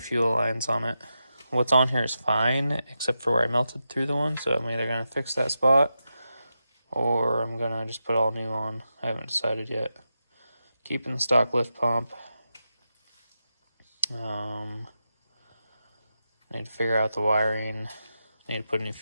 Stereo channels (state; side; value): inverted; both; correlation -0.88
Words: lines on it. What's on here is fine, except for where I melted through the one, so I'm either going to fix that spot, or I'm going to just put all new on. I haven't decided yet. Keeping the stock lift pump. Need to figure out the wiring. Need to put a new